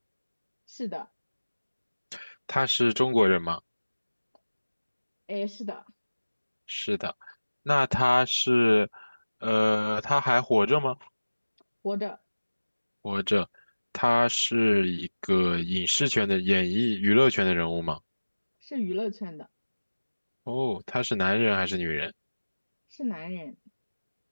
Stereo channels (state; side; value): inverted; both; correlation -1.00